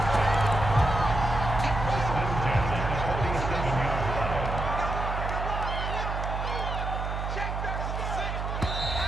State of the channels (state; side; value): noise; right; hum, 3 dB below the sound